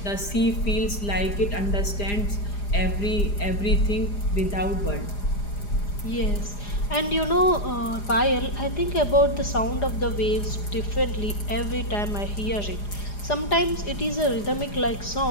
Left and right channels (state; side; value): late; right; 4.9 ms